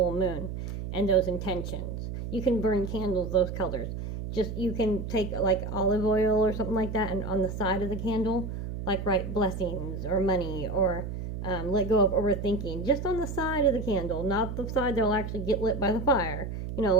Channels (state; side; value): noise; right; hum, 6 dB below the sound